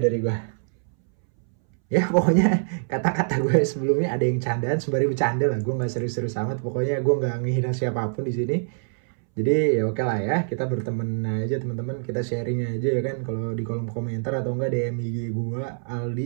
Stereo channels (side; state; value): left; silent; 62 dB below the other